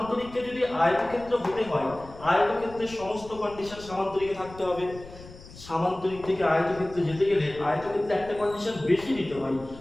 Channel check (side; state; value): left; noise; rumble, 17 dB below the sound